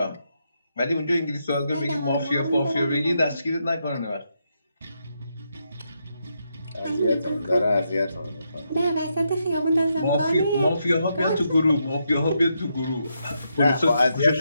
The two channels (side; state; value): both; inverted; correlation -0.81